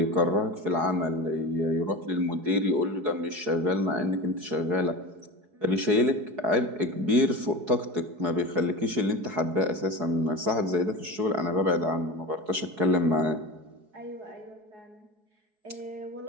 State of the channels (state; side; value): late; left; 4.7 ms